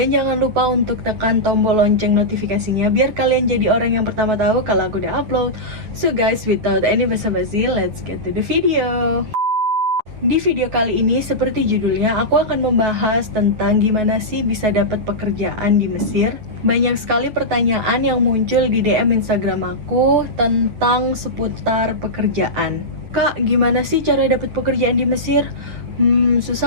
jangan lupa untuk tekan tombol lonceng notifikasinya, biar kalian jadi orang yang pertama tahu kalau aku udah upload. So guys, without any basa-basi, let's get to the video. Di video kali ini, seperti judulnya, aku akan membahas tentang gimana sih bisa dapat pekerjaan di Mesir. Banyak sekali pertanyaan yang muncul di DM Instagram aku tentang seputar pekerjaan. Kak, gimana sih cara dapat pekerjaan di Mesir?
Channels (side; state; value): left; late; 9.9 ms